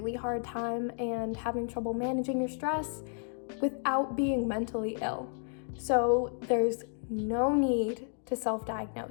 hard time and having trouble managing your stress without being mentally ill. So there's no need to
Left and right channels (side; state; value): right; silent; 56 dB below the other